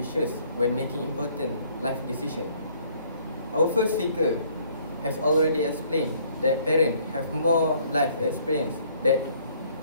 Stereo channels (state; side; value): inverted; both; correlation -0.62